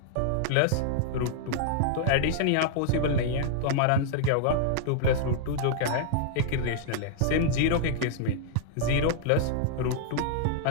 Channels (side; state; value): both; different; correlation -0.01